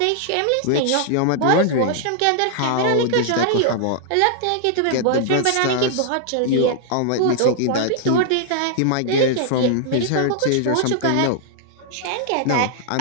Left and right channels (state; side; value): different; both; correlation -0.01